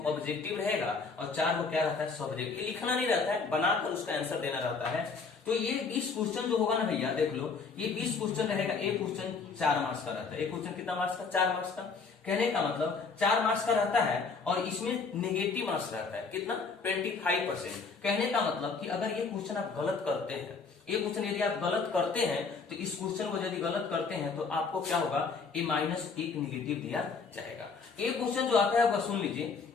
ऑब्जेक्टिव रहेगा और 4 वो क्या रहता है सब्जेक्ट। ये लिखना नहीं रहता है, बनाकर उसका आंसर देना रहता है। तो ये 20 क्वेश्चन जो होगा ना भैया, देख लो, ये 20 क्वेश्चन रहेगा। एक क्वेश्चन 4 मार्क्स का रहता है। एक क्वेश्चन कितना मार्क्स का 4 मार्क्स का। कहने का मतलब 4 मार्क्स का रहता है और इसमें नेगेटिव मार्क्स रहता है कितना 25%। कहने का मतलब कि अगर ये क्वेश्चन आप गलत करते हैं, ये क्वेश्चन यदि आप गलत करते हैं तो इस क्वेश्चन को यदि गलत करते हैं तो आपको क्या होगा, -1 निगेटिव दिया जाएगा। एक क्वेश्चन जो आता है वो सुन लीजिए,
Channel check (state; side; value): quieter; right; 4.8 dB